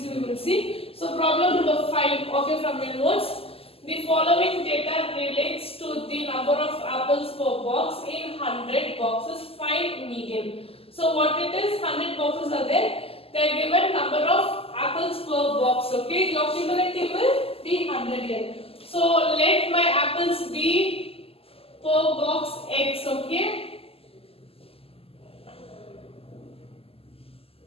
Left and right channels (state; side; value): late; right; 0.28 ms